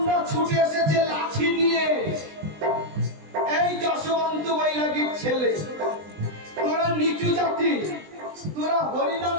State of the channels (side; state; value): left; late; 20 ms